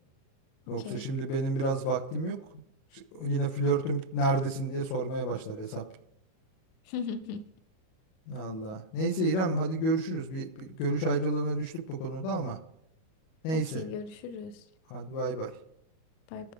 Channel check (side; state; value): right; late; 37 ms